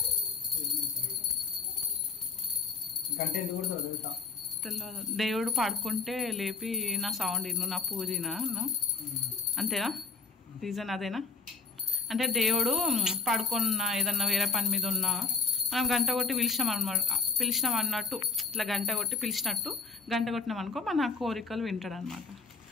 తెలియదు. దేవుడు పడుకుంటే లేపి నా సౌండ్ ఇను, నా పూజ అంతేనా? రీజన్ అదేనా? అంటే దేవుడు పడుకున్న ఏదన్నా వేరే పని మీద ఉన్నా మనం గంట కొట్టి పిలిచినాం అన్నట్టు, ఇట్లా గంట కొట్టి పిలిచినట్టు గంట కొట్టినాం అనుకో మన కోరికలు వింటాడు అనమాట.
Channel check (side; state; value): right; quieter; 4.4 dB